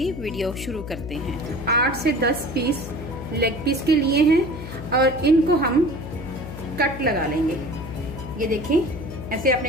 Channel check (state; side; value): noise; left; hum, 10 dB below the sound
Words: वीडियो शुरू करते हैं। 8 से 10 पीस लेग पीस के लिए हैं और इनको हम कट लगा लेंगे। ये देखिए, ऐसे